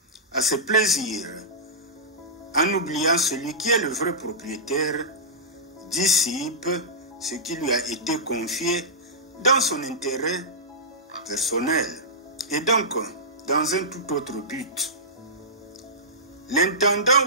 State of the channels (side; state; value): both; normal; correlation -0.16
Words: à ses plaisirs, en oubliant celui qui est le vrai propriétaire, dissipe ce qui lui a été confié dans son intérêt personnel et donc dans un tout autre but. L'intendant